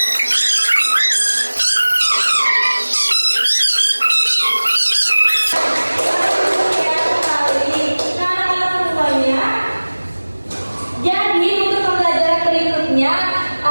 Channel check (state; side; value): inverted; both; correlation -1.00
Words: Jadi untuk pembelajaran berikutnya